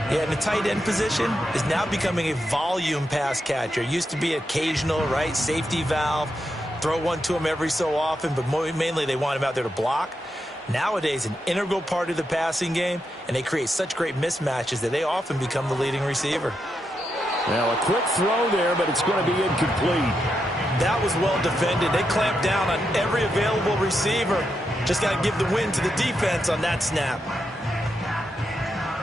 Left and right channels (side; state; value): both; normal; correlation 0.84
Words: Yeah, and the tight end position is now becoming a volume pass catcher. It used to be occasional, right? Safety valve. Throw one to him every so often, but mainly they want him out there to block. Nowadays, an integral part of the passing game, and they create such great mismatches that they often become the leading receiver. Now a quick throw there, but it's going to be incomplete. That was well defended. They clamped down on every available receiver. Just got to give the win to the defense on that snap.